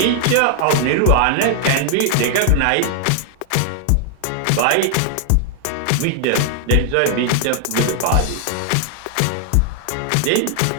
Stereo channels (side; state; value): both; different; correlation 0.00